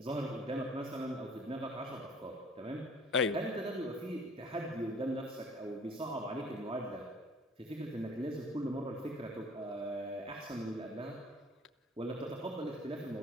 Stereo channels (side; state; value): both; normal; correlation 0.52